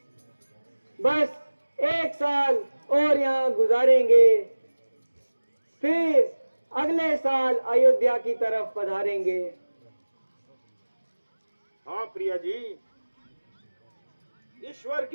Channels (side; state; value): both; inverted; correlation -1.00